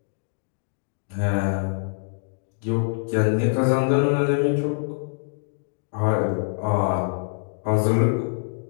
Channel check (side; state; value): right; silent; digital silence